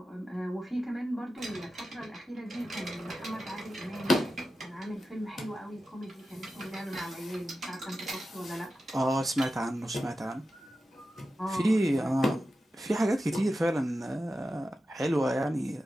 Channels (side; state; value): both; normal; correlation 0.92